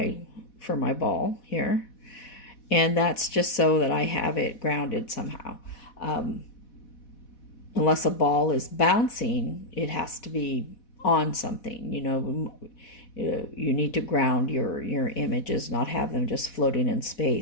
for my ball here, and that's just so that I have it grounded somehow. Unless a ball is bouncing, it has to be on something. You need to ground your images, not have them just floating in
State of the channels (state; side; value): late; right; 4.1 ms